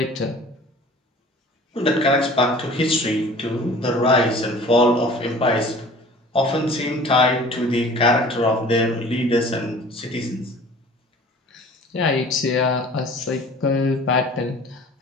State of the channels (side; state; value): both; normal; correlation 0.46